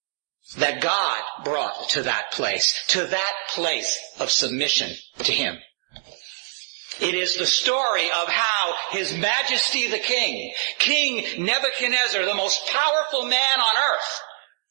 that God brought to that place of submission to Him. It is the story of how His Majesty the King, King Nebuchadnezzar, the most powerful man on earth,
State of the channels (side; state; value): left; silent; 57 dB below the other